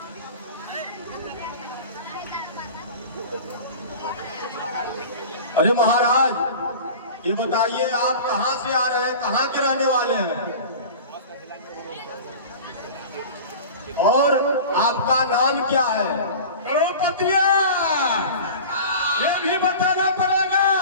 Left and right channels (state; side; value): inverted; both; correlation -0.36